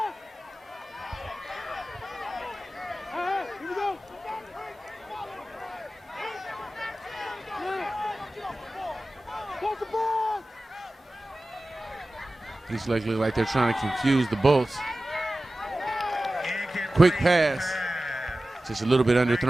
Here we go! Watch the ball! These legs look like they're trying to confuse the Bolts. Quick pass. Just a little bit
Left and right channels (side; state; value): both; normal; correlation 0.96